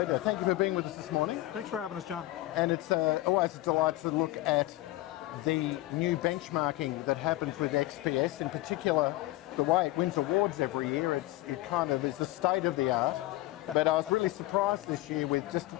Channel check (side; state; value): right; quieter; 17.3 dB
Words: Thank you for being with us this morning. Thanks for having us, John. And it's always a delight to look at the new benchmarking that happens with XPS, in particular the way it wins awards every year. It kind of is the state of the art. But I was really surprised this year with just